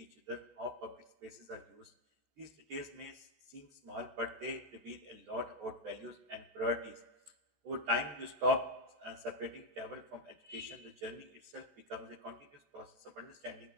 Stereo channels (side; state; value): left; late; 14 ms